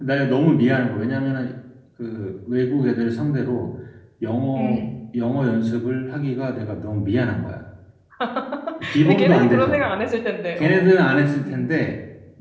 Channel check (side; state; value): both; identical; correlation 1.00